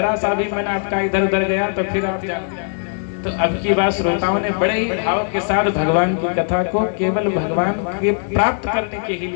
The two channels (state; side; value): silent; right; 55 dB below the other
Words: सा भी मन आपका इधर उधर गया तो फिर आप जान। तो अब की बार श्रोताओं ने बड़े ही भाव के साथ भगवान की कथा को केवल भगवान के प्राप्त करने के